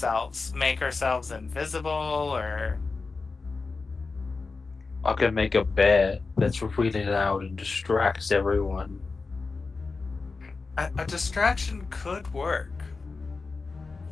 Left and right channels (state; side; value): quieter; right; 4.2 dB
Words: make ourselves invisible, or? I can make a bear that's really loud and distracts everyone. A distraction could work.